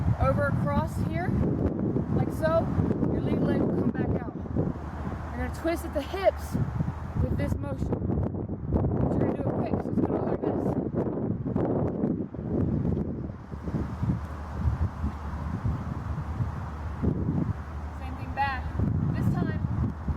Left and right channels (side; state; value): both; identical; correlation 1.00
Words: over across here, like so. Your lead leg will come back out. You're going to twist at the hips with this motion. But you're going to do it quick, so it's going to look like this. Same thing back. This time,